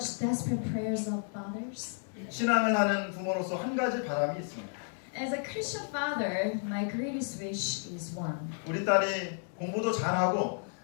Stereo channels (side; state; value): right; silent; 56 dB below the other